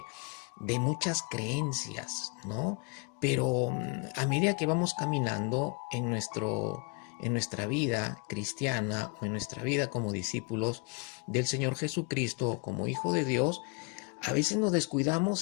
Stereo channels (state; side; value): quieter; right; 32.6 dB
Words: muchas creencias, ¿no? Pero a medida que vamos caminando en nuestra vida cristiana o en nuestra vida como discípulos del Señor Jesucristo, como hijo de Dios, a veces nos